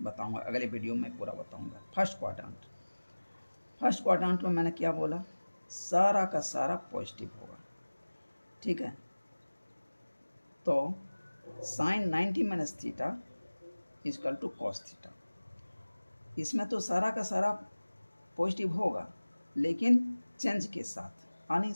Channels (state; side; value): inverted; both; correlation -1.00